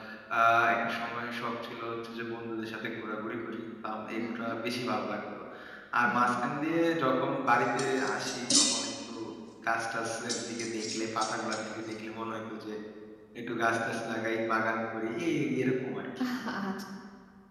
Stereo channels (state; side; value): identical; both; correlation 1.00